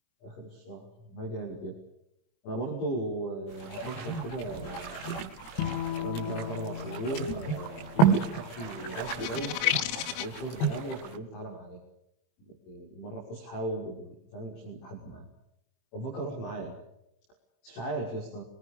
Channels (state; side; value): late; right; 26 ms